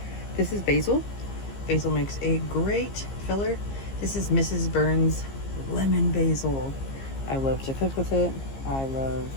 This is basil. Basil makes a great filler. This is Mrs. Burns lemon basil. I love to cook with it. I love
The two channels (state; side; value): late; right; 15 ms